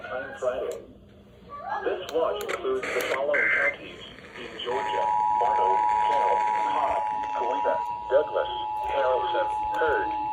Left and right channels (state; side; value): identical; both; correlation 1.00